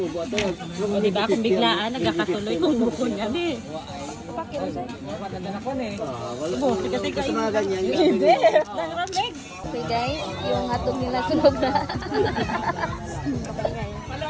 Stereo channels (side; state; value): both; identical; correlation 1.00